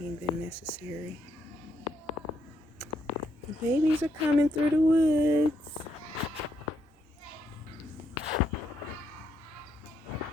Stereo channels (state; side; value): normal; both; correlation 0.77